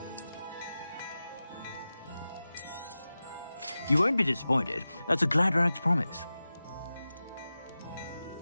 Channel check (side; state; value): both; inverted; correlation -0.95